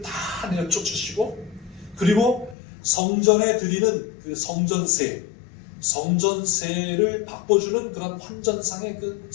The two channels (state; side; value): drops out; right; at 2.6 s